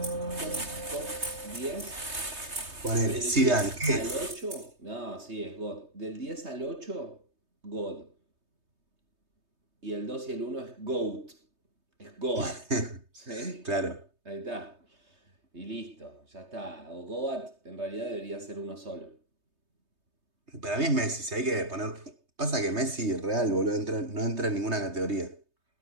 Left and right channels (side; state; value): left; late; 3.2 ms